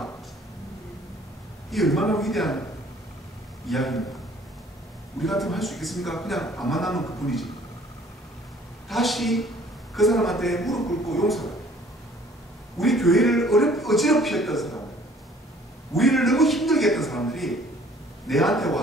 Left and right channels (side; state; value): both; normal; correlation 0.56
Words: 이 얼마나 위대한 이야기입니다. 우리 같으면 할 수 있겠습니까? 그냥 안 만나면 그뿐이지. 다시 그 사람한테 무릎 꿇고 용서해. 우리 교회를 어지럽히 했던 사람들, 우리를 너무 힘들게 했던 사람들이 내한테